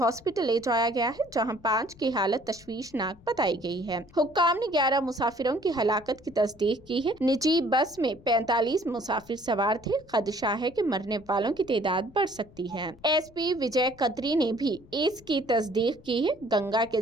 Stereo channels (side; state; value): left; noise; rumble, 24 dB below the sound